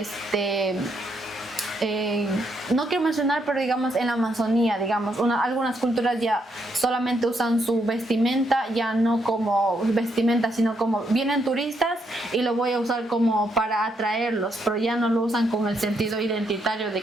no quiero mencionar, pero digamos en la Amazonía, digamos, algunas culturas ya solamente usan su vestimenta, ya no como vestimenta, sino como vienen turistas y lo voy a usar como para atraerlos, pero ya no lo usan con el sentido identitario de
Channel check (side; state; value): both; normal; correlation 0.76